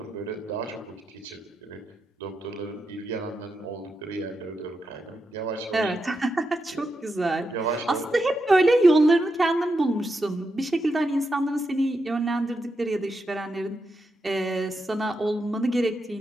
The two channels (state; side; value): normal; both; correlation 0.85